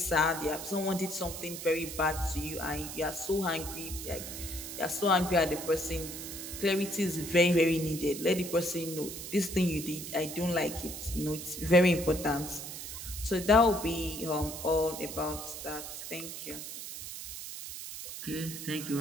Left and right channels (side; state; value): right; noise; hiss, 8 dB below the sound